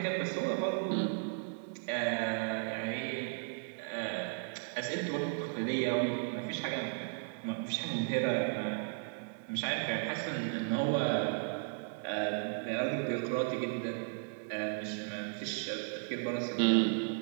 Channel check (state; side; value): silent; left; 54 dB below the other